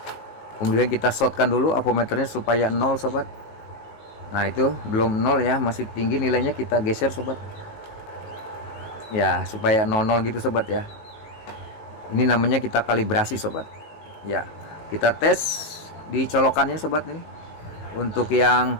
Kemudian kita shotkan dulu apometernya supaya 0 sobat. Nah itu belum 0 ya, masih tinggi nilainya, kita geser sobat ya, supaya 00 gitu sobat ya. Ini namanya kita kalibrasi sobat ya. Kita tes di colokannya sobat. Ini untuk yang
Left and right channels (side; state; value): right; late; 19 ms